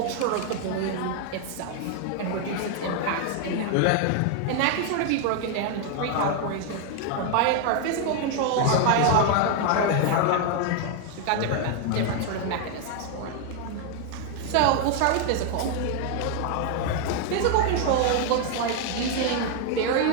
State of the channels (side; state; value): both; different; correlation 0.00